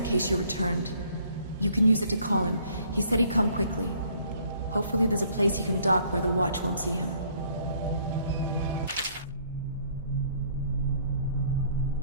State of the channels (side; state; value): both; inverted; correlation -0.62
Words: case you returned. You can use it to call him. He said he'd come quickly. Hopefully there's a place he can dock where the watch won't see him.